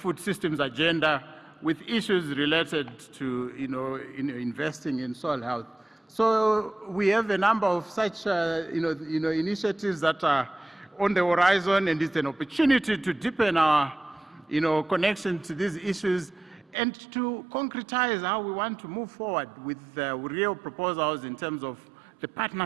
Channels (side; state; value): left; drops out; at 16.8 s